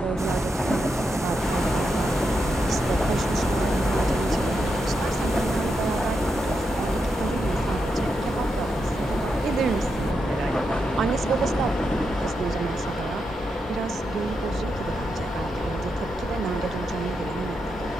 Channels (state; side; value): normal; both; correlation 0.84